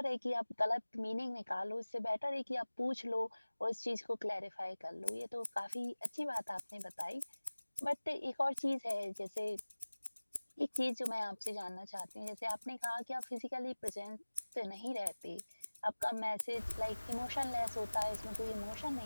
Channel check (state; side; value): inverted; both; correlation -1.00